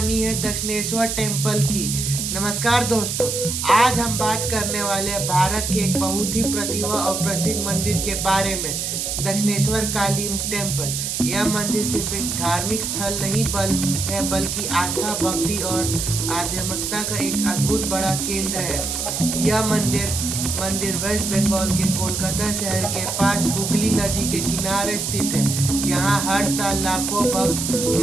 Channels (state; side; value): noise; right; hiss, 2 dB below the sound